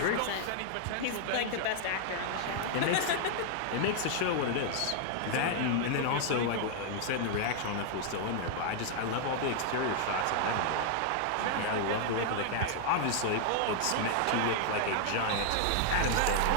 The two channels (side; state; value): both; different; correlation 0.00